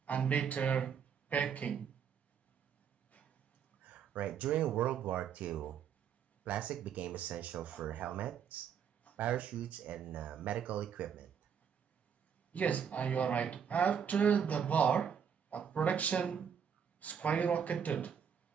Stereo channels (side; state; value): left; quieter; 7.6 dB